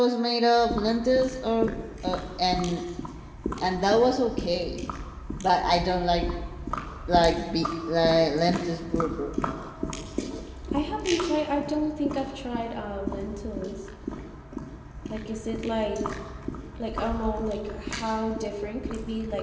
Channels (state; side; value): identical; both; correlation 1.00